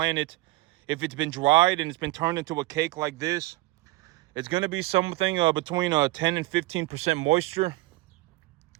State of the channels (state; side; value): quieter; left; 19.6 dB